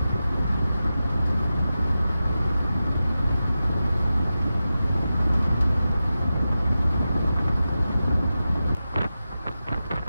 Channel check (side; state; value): both; inverted; correlation -0.92